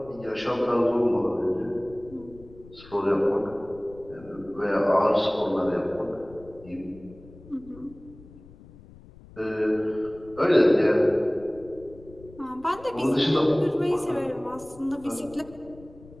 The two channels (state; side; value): noise; left; rumble, 21 dB below the sound